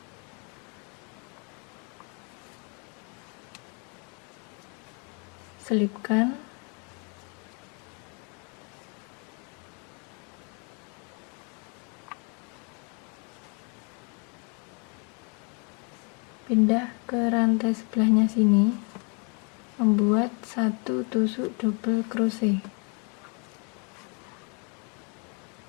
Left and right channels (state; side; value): quieter; right; 35.8 dB